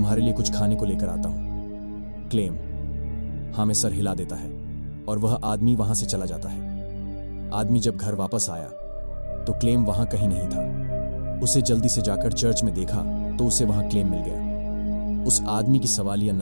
लिए कुछ खाने को लेकर आता हूं। क्लेम हाँ में सर हिला देता है और वह आदमी वहां से चला जाता है। आदमी जब घर वापस आया तो क्लेम वहां कहीं नहीं था। उसे जल्दी से जाकर चर्च में देखा तो उसे वहां क्लेम मिल गया। उस आदमी की सवालिया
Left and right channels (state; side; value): inverted; both; correlation -1.00